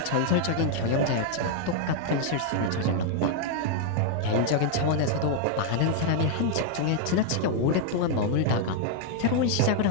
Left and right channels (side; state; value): both; different; correlation 0.00